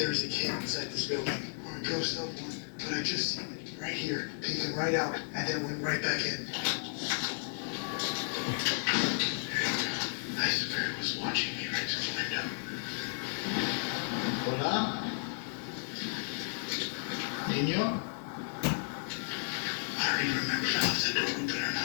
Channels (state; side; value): silent; right; digital silence